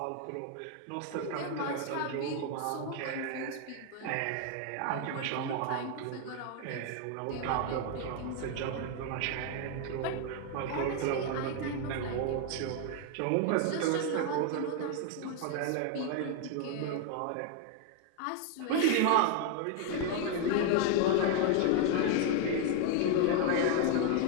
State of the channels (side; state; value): both; different; correlation 0.01